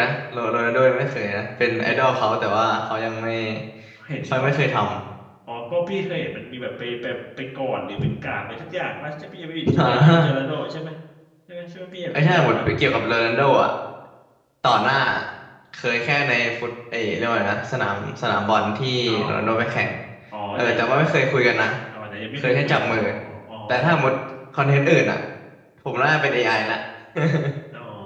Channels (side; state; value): both; identical; correlation 1.00